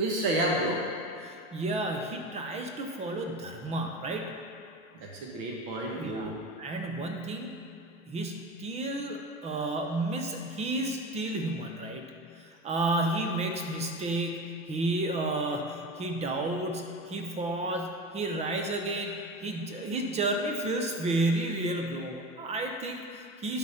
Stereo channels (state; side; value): normal; both; correlation 0.29